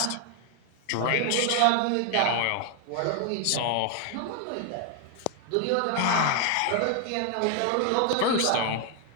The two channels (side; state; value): both; different; correlation 0.00